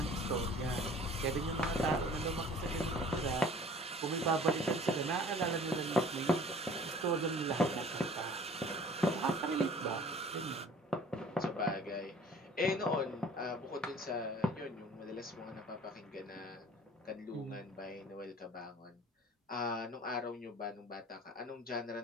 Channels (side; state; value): both; normal; correlation 0.49